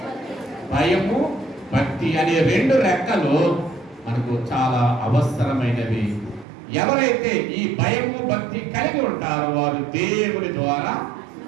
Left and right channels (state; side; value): drops out; left; at 6.5 s